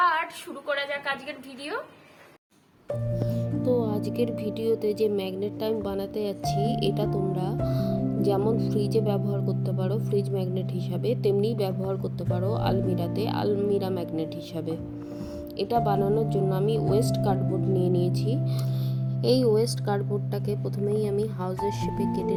শুরু করা যাক আজকের ভিডিও। তো আজকের ভিডিওতে যে ম্যাগনেটটা আমি বানাতে যাচ্ছি, এটা তোমরা যেমন ফ্রিজে ব্যবহার করতে পারো ফ্রিজ ম্যাগনেট হিসাবে, তেমনি ব্যবহার করতে পারো আলমিরাতে আলমিরা ম্যাগনেট হিসাবে। এটা বানানোর জন্য আমি ওয়েস্ট কার্ডবোর্ড নিয়ে নিয়েছি। এই ওয়েস্ট কার্ডবোর্ডটাকে প্রথমেই আমি হাউসের শেপে কেটে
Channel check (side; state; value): both; identical; correlation 1.00